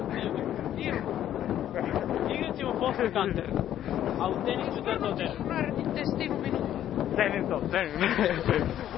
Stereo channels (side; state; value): right; quieter; 11.4 dB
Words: Igrat ćemo posle kanter, a u tenisu da to teže. Radite s tim u minutu. Cenim to.